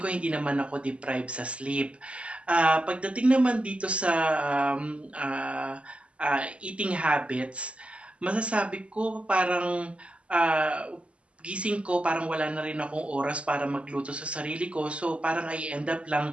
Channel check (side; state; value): left; late; 0.059 ms